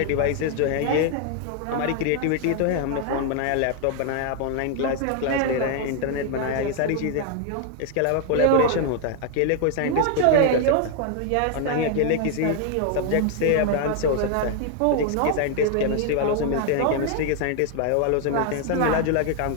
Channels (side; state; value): both; different; correlation 0.00